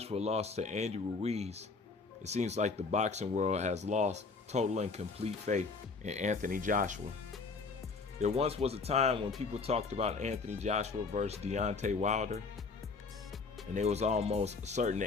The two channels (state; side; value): quieter; right; 4.4 dB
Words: lost to Andy Ruiz, it seems like the boxing world has lost total and complete faith in Anthony Joshua. There once was a time when people talked about Anthony Joshua versus Deontay Wilder, and it was almost certain